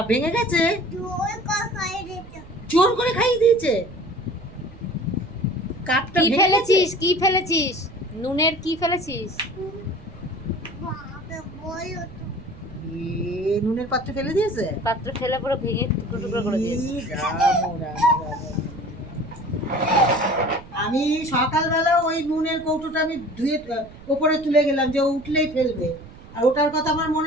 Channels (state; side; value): noise; right; rumble, 19 dB below the sound